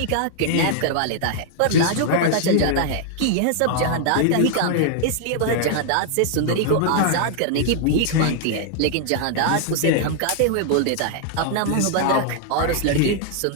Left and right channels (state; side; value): different; both; correlation 0.00